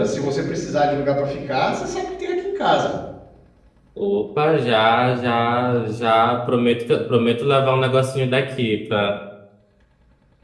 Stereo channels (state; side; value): identical; both; correlation 1.00